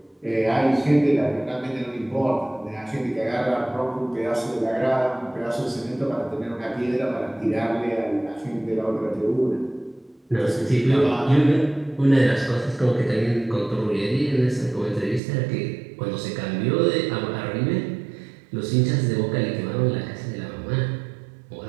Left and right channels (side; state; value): left; drops out; at 15.2 s